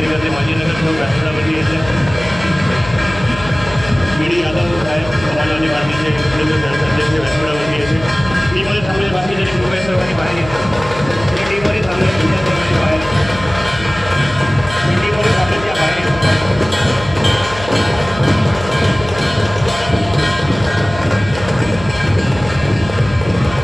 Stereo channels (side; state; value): left; noise; hum, 13 dB below the sound